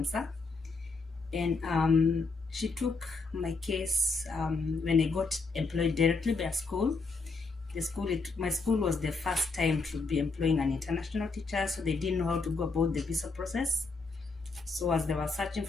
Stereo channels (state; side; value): quieter; right; 3.9 dB